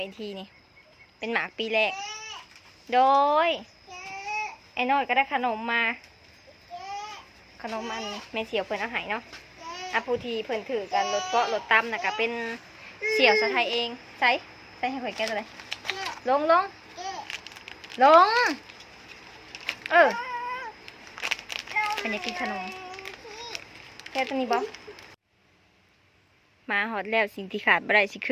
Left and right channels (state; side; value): identical; both; correlation 1.00